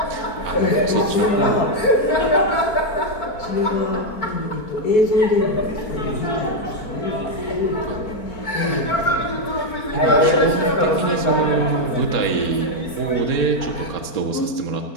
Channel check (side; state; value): right; late; 4.4 ms